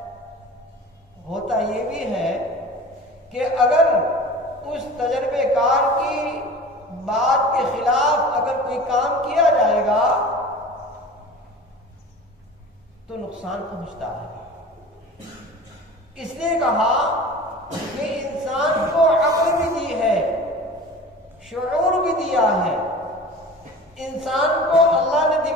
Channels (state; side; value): normal; both; correlation 0.38